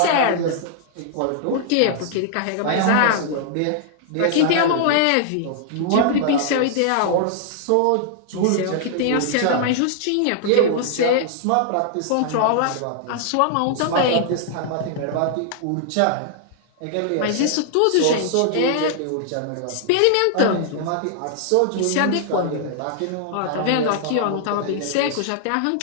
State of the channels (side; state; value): both; different; correlation -0.01